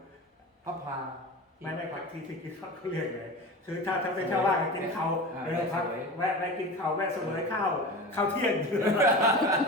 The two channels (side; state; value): both; normal; correlation 0.31